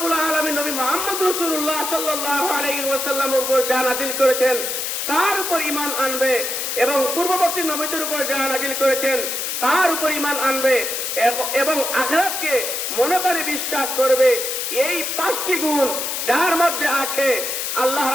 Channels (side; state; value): left; noise; hiss, 2 dB below the sound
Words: আলামিন নবী মুহাম্মদ রাসূলুল্লাহ সাল্লাল্লাহু আলাইহি ওয়াসাল্লামের উপর যা নাযিল করেছেন তার উপর ঈমান আনবে, এবং পূর্ববর্তী নবীদের উপর যা নাযিল করেছেন তার উপর ঈমান আনবে, এবং আখিরাতকে মনে করে বিশ্বাস করবে। এই 5টি গুণ যার মধ্যে আছে, আল্লাহ